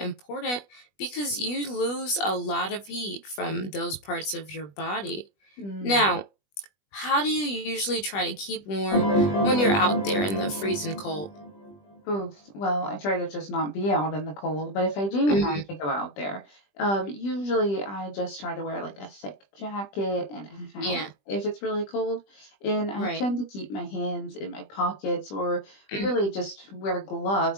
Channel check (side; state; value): right; late; 20 ms